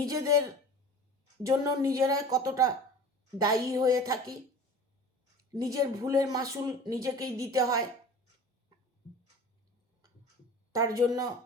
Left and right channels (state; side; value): normal; both; correlation 0.40